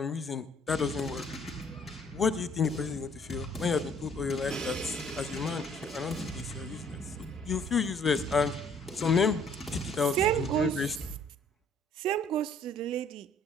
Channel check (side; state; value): both; normal; correlation 0.60